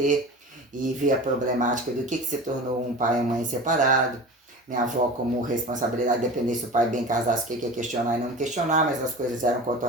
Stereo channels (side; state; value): both; normal; correlation 0.34